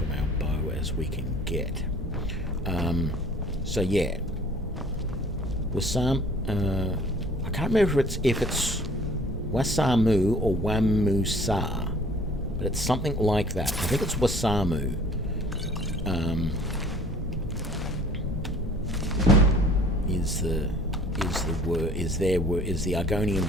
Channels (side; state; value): both; normal; correlation 0.52